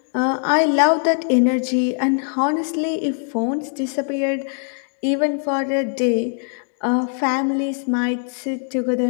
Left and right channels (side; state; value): right; silent; 61 dB below the other